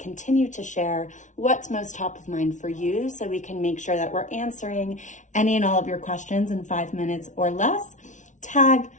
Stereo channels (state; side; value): late; right; 0.36 ms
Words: to share what's most top of mind for you so we can make sure that we're answering any and all of your questions in 5 minutes or less. Tag,